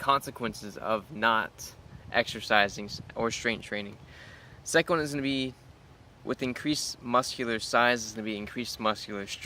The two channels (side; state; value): both; identical; correlation 1.00